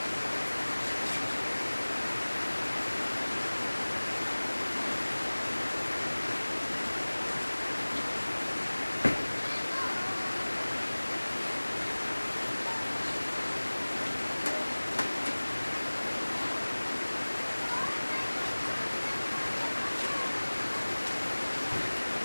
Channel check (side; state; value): both; inverted; correlation -1.00